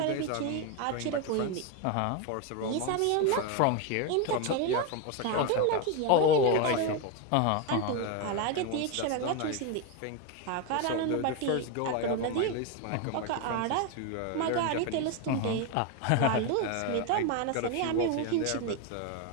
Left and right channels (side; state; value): both; different; correlation 0.02